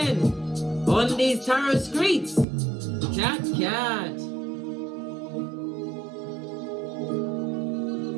on these tarot streets. Cat.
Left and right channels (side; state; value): left; drops out; at 2.5 s